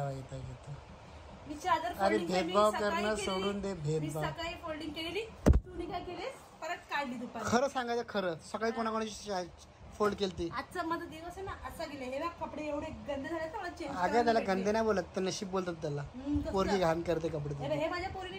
पाहिजे. मी चादर अरे folding भेदभाव केली, सकाळी करणं केली. सोडून दे. मी भेदभाव सकाळी फोल्डिंग केलेली, तू काय केलीस? परत काढली दुपारी. खरं सांगायचं, खरं सकाळी कोणाकोणाची फोल्ड केली. आजचा माझा दिवस आहे ना असा गेले. हे बघ कपडे एवढे गंदे झाले तर मला चेंज. अगं त्याला गंदे नाही बोलत, तर नशीब बोलतात त्याला. पोरगी घाण करते कपडे. हे माझ्या पोरीने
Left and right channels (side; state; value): both; identical; correlation 1.00